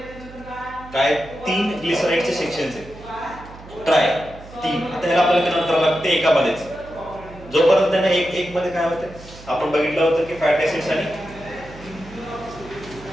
काय 3 ग्लिसराइडचे सेक्शन्स आहेत. ट्राय 3. आता ह्याला आपल्याला कन्वर्ट करावं लागते एकामध्येच. जोपर्यंत त्यांना एक मध्ये काय होते आपण बघितलं होतं की फॅट ऍसिड्स आणि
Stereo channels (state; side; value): noise; right; hum, 18 dB below the sound